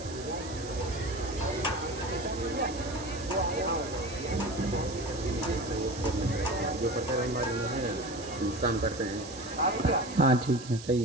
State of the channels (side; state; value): right; noise; hiss, 14 dB below the sound